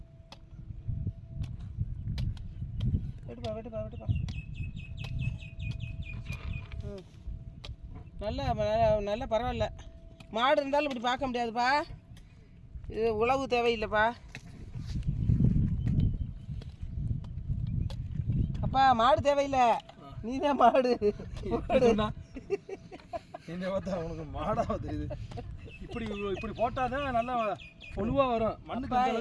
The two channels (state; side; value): identical; both; correlation 1.00